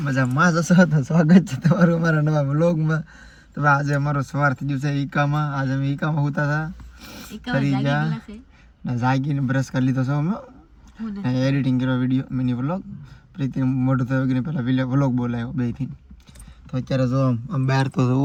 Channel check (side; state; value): both; identical; correlation 1.00